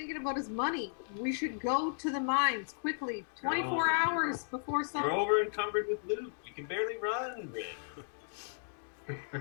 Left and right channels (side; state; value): right; silent; digital silence